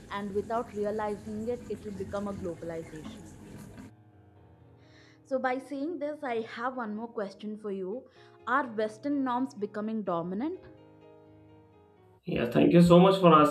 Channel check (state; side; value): identical; both; correlation 1.00